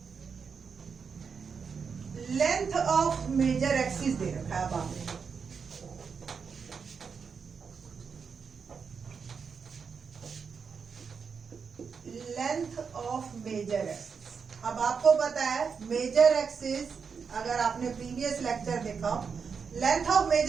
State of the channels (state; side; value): quieter; left; 5.9 dB